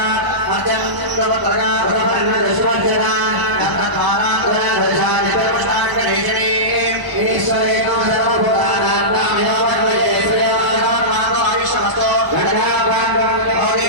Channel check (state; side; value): late; left; 1.0 ms